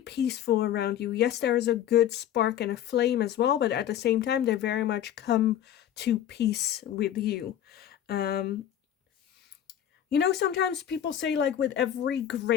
around you. Yes, there is a good spark and a flame as well, but at the same time, they very much come to peace with you. You know, sometimes people say, like, with every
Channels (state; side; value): quieter; right; 10.6 dB